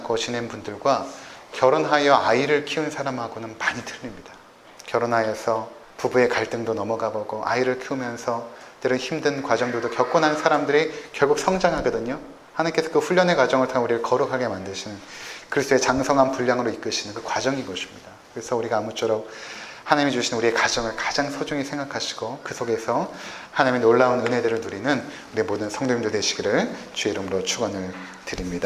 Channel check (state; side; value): identical; both; correlation 1.00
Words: 지낸 분들과 결혼하여 아이를 키운 사람하고는 많이 틀립니다. 결혼하여서 부부의 갈등도 넘어가 보고 아이를 키우면서 때론 힘든 과정들도 겪고 난 사람들이 결국 성장하거든요. 하나님께서 그 훈련의 과정을 통해 우리를 거룩하게 만드시는 그리스도의 장성한 분량으로 이끄시는 그 과정인 것입니다. 그래서 우리가 아무쪼록 하나님이 주신 우리의 가정을 가장 소중히 생각하시고 그 속에서 하나님의 놀라운 은혜들을 누리는 우리 모든 성도님들 되시기를 주의 이름으로 축원을